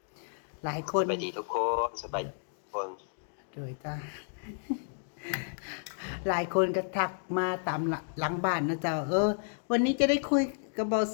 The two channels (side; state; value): right; silent; digital silence